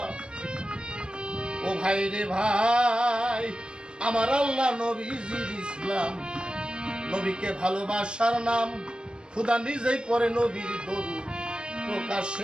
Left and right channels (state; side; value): late; left; 0.053 ms